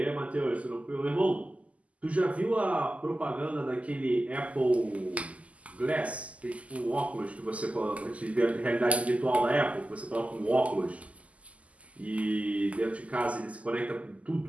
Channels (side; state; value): left; late; 0.068 ms